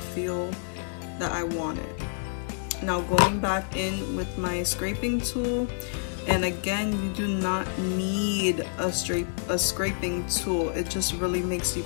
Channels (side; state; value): right; silent; 59 dB below the other